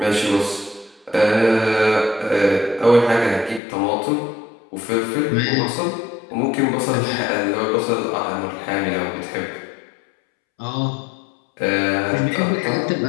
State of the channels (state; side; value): drops out; right; at 3.6 s